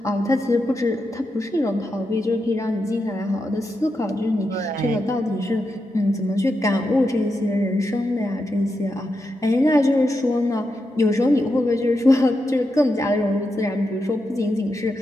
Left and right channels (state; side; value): normal; both; correlation 0.86